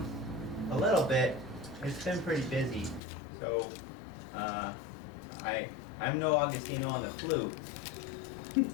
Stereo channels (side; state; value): right; drops out; at 3.0 s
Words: little bit. It's been pretty busy. So, I'm no Augustino on the flute,